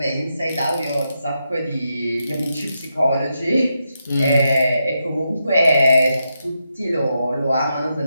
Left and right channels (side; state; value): both; inverted; correlation -0.84